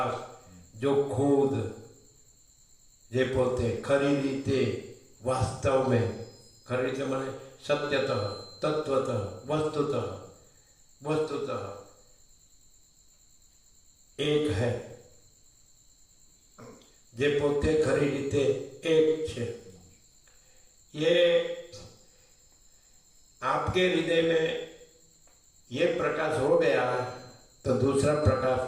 जो खुद जे पोते खरी रीते वास्तव में, खरी रीते माने सत्यतः, तत्वतः, वस्तुतः एक है। जे पोते खरी रीते एक छे। ये आपके हृदय में ये प्रकाश हो गया तो दूसरा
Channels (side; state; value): both; identical; correlation 1.00